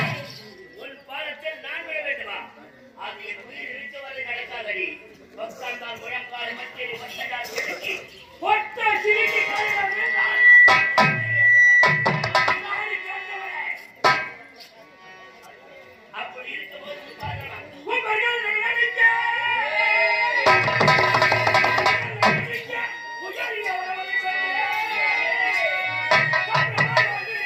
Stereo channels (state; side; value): identical; both; correlation 1.00